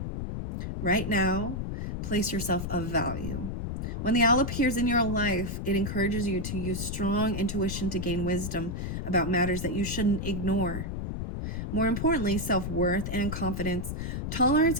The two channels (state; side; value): noise; left; rumble, 4 dB below the sound